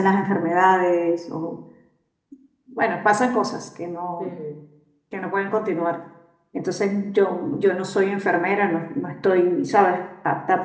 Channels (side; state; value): both; identical; correlation 1.00